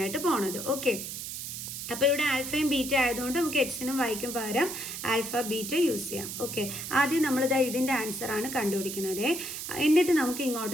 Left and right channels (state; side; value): noise; right; hiss, 7 dB below the sound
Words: പോണത്. ഓക്കെ, അപ്പോൾ ഇവിടെ ആൽഫയും ബീറ്റ ആയതുകൊണ്ട് നമുക്ക് എക്സിനും വൈക്കും പകരം ആൽഫ ബീറ്റ യൂസ് ചെയ്യാം. ഓക്കെ, ആദ്യം നമ്മളിത് ഇതിൻ്റെ ആൻസറാണ് കണ്ടുപിടിക്കുന്നത്. എന്നിട്ട് നമുക്ക്